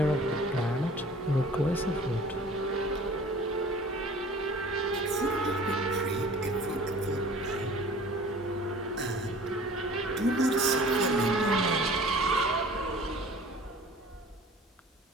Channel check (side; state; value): both; normal; correlation 0.46